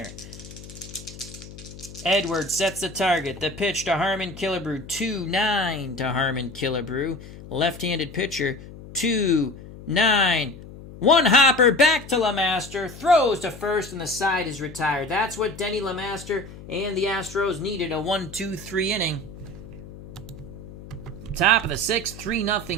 Edwards sets the target. The pitch to Harmon Killebrew. 2-9 to Harmon Killebrew. Left-handed pitcher. 2-9. One hopper back to LeMaster. Throws to first, and the side is retired. That's what Denny LeMaster and the Astros needed. A 1-2-3 inning. Top of the 6th,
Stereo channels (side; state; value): left; noise; hum, 16 dB below the sound